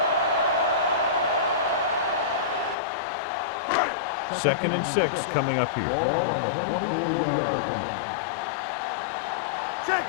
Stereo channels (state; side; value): drops out; right; at 2.8 s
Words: Second and 6 coming up here. Ball on the 24-yard line. Keep the throttle down. Check